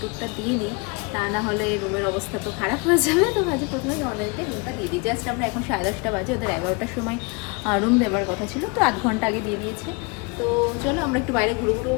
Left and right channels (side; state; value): right; quieter; 30.1 dB